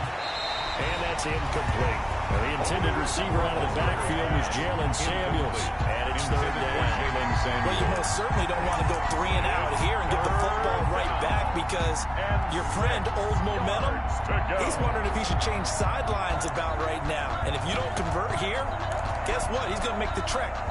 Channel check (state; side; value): identical; both; correlation 1.00